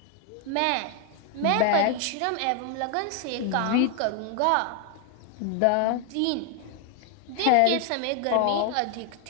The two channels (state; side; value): different; both; correlation 0.00